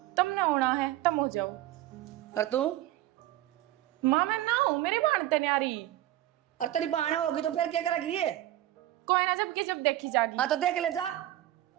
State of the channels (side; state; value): left; quieter; 14.5 dB